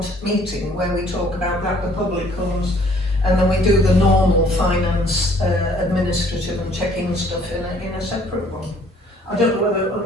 meeting where we talk about that, the public comes, and then we do the normal finance, administrative and checking stuff in a separate one. I don't know whether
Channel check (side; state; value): both; normal; correlation 0.59